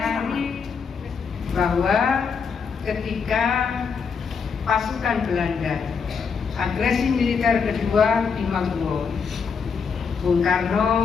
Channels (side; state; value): right; quieter; 5.9 dB